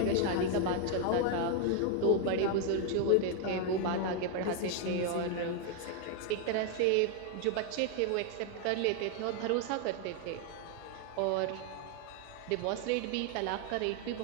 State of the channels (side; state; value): both; different; correlation 0.01